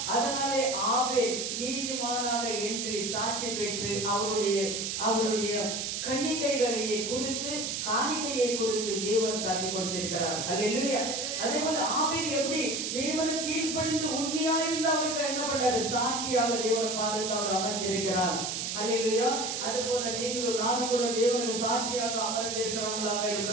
அதனாலே ஆபேல் நீதிமானாக என்று சாட்சி பெற்று அவருடைய கன்னிக்கைகளையே குறித்து, காணிக்கையை குறித்து தேவன் சாட்சி கொடுத்திருக்கிறார். அல்லேலூயா. அதே போல ஆபேல் எப்படி தேவனுக்கு கீழ்ப்படிந்து உண்மையா இருந்து அவருக்கு என்ன பண்றாரு, சாட்சியாக தேவனை பாதத்தில் அவர் அமர்ந்திருக்கிறார். அல்லேலூயா. அது போல நீங்களும் நானும் கூட தேவனுக்கு சாட்சியாக அமர்ந்து இருக்கிறவங்களாக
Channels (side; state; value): right; noise; hiss, 2 dB below the sound